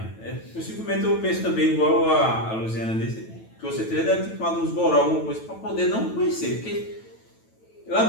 Possivelmente eu penso também, igual a Luciana disse, que você deve ter tomado uns goró, alguma coisa, para poder não conhecer. Porque ele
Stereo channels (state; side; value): late; right; 9.1 ms